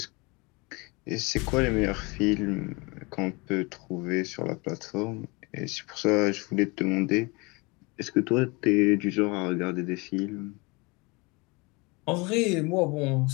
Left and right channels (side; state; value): right; quieter; 26.8 dB